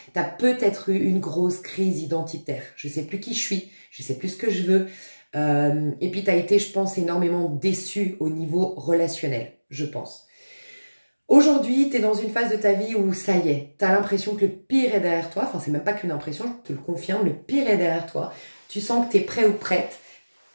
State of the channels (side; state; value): both; inverted; correlation -1.00